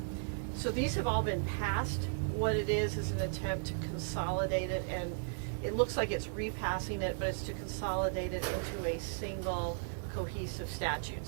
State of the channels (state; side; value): silent; left; digital silence